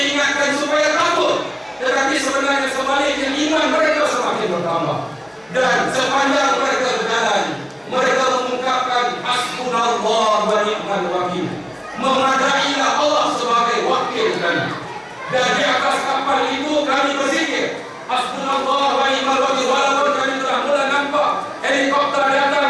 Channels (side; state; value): both; identical; correlation 1.00